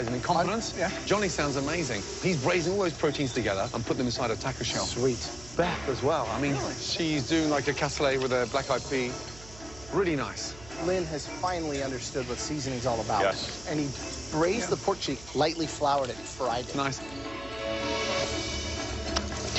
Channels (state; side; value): noise; right; hum, 18 dB below the sound